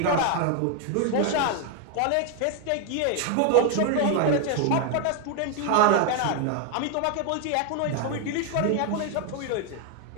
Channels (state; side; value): different; both; correlation 0.01